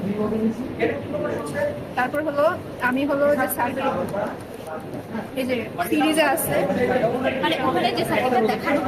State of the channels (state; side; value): identical; both; correlation 1.00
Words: তারপর হলো আমি হলো যে সার্ভে এই যে সিরিজে আছে মানে ওখানে যে সাইডটা দেখানো